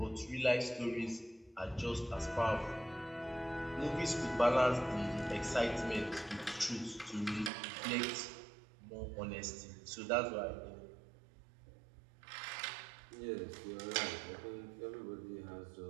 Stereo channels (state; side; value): drops out; left; at 7.5 s